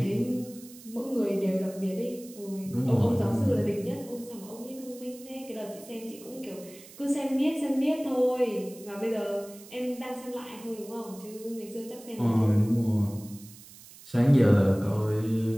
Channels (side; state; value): right; noise; hiss, 19 dB below the sound